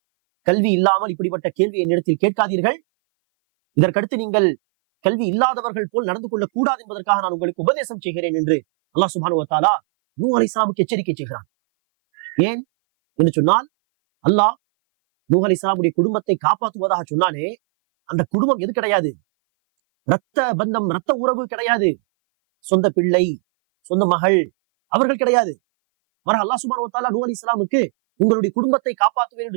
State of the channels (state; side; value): silent; left; 59 dB below the other